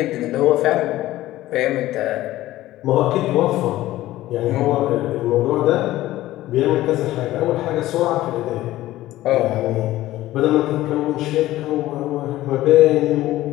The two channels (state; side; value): quieter; right; 15.7 dB